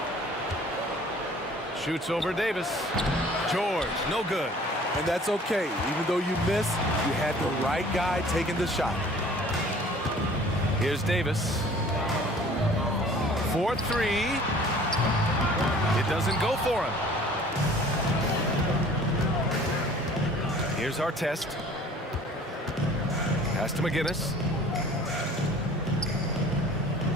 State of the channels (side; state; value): both; normal; correlation 0.50